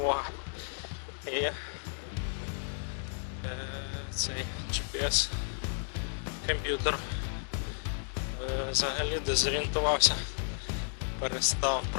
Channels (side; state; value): right; silent; digital silence